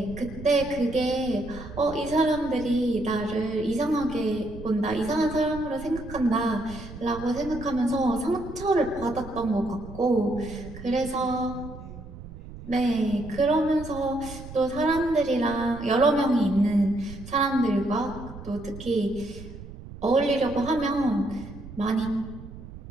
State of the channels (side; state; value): right; noise; rumble, 14 dB below the sound